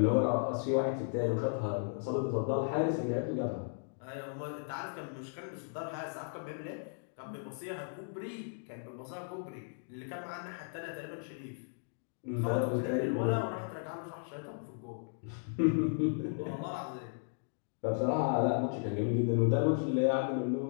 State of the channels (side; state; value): right; silent; digital silence